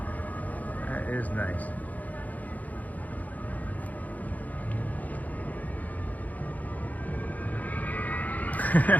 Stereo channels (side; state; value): right; late; 0.078 ms